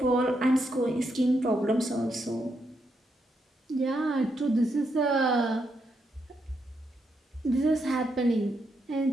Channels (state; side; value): normal; both; correlation 0.80